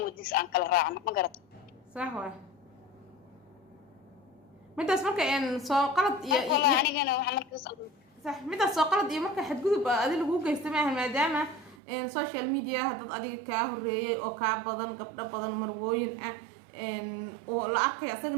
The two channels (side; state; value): left; drops out; at 11.8 s